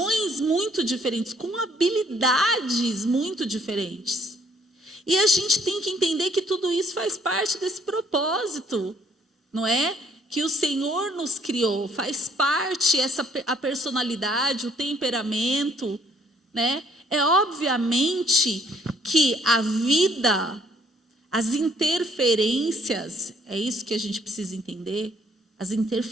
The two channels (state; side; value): normal; both; correlation 0.64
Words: muito diferentes, com habilidades muito diferentes. E a gente tem que entender que tudo isso faz parte desse propósito, não é? Que o Senhor nos criou, faz parte a personalidade, o temperamento, né? É obviamente que a vida, as interferências, é isso que a gente precisa entender, as